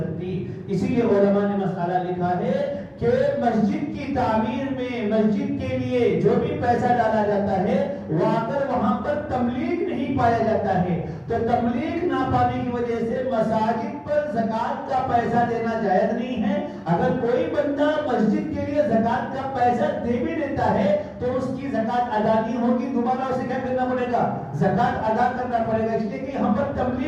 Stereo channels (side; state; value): both; identical; correlation 1.00